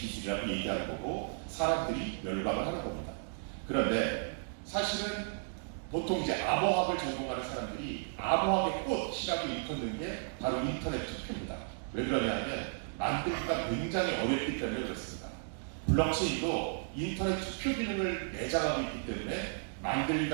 얘기하는 거고 사람들이 열광을 하는 겁니다. 그런데 사실은 보통 이제 암호학을 전공하는 사람들이 암호학의 꽃이라고 일컫는 게 바로 인터넷 투표입니다. 왜 그러냐면 만들기가 굉장히 어렵기 때문에 그렇습니다. 블록체인도 인터넷 투표 기능을 내장하고 있기 때문에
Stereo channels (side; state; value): left; silent; digital silence